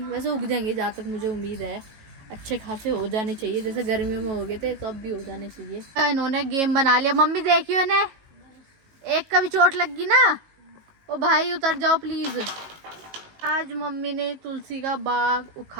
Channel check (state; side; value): late; left; 19 ms